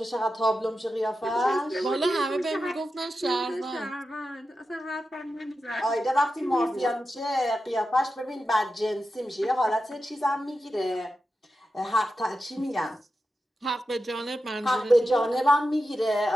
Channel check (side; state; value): both; normal; correlation 0.91